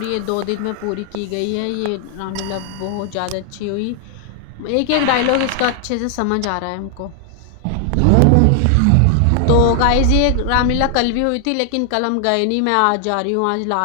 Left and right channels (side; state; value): both; different; correlation 0.00